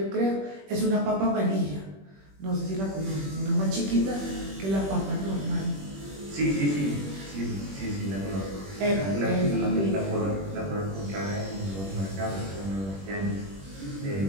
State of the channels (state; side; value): late; left; 21 ms